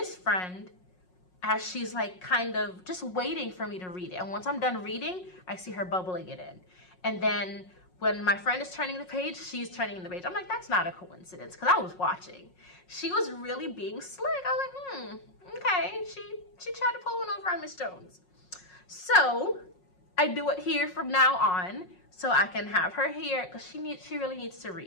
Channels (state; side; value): late; right; 5.5 ms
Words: friend as she's like kind of just waiting for me to read it. And once I'm done reading, I see her bubbling it in. And then when my friend is turning the page, she's turning the page. I'm like, that's not a coincidence, because I was watching. She was really being slick. I was like, okay. She tried to pull one over on Miss Jones. So I do it here from now on so I can have her here, because she really needs to